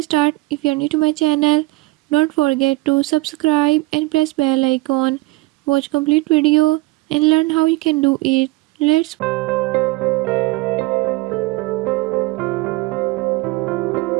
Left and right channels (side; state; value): left; quieter; 21.4 dB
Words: start, if you are new to my channel, don't forget to subscribe and press bell icon. Watch complete video and learn how you can do it. Let's